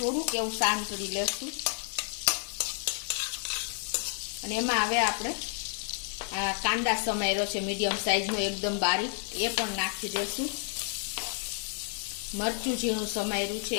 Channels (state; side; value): silent; right; 57 dB below the other